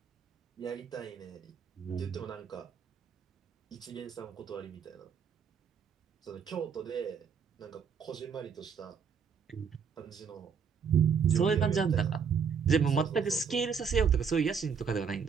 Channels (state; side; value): quieter; left; 6.5 dB